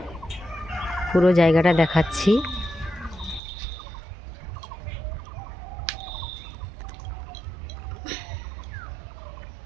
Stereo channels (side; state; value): left; drops out; at 3.4 s